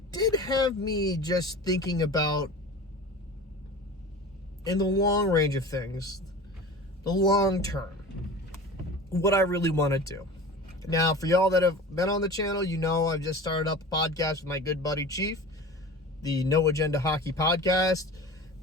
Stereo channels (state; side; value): normal; both; correlation 0.35